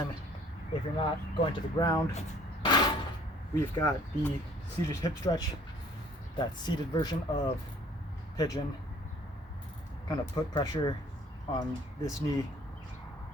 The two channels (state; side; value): normal; both; correlation 0.56